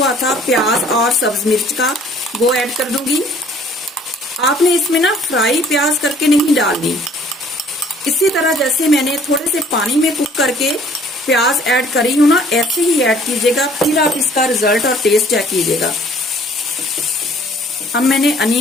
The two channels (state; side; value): normal; both; correlation 0.56